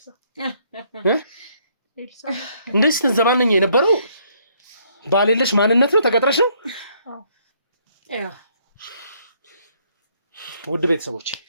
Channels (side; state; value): both; inverted; correlation -0.68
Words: ኤልሳ እንደዚህ ስትዘባነኝ የነበረው ባሌለሽ ማንነት ነው? ተቀጥረሽ ነው? ውድ ቤተሰቦች